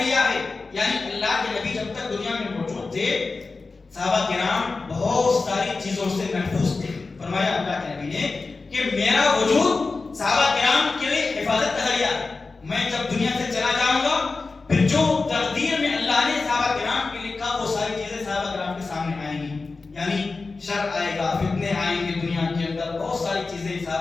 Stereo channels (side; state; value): right; quieter; 3.9 dB